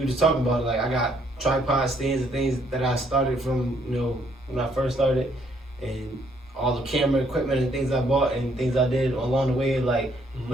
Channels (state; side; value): normal; both; correlation 0.68